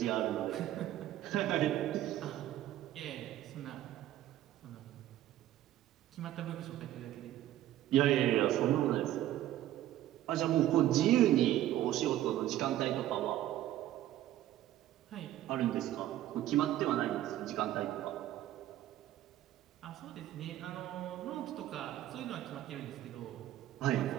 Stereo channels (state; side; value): quieter; left; 13.3 dB